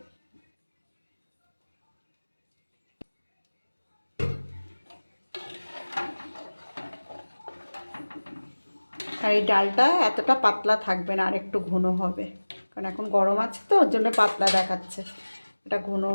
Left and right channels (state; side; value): inverted; both; correlation -1.00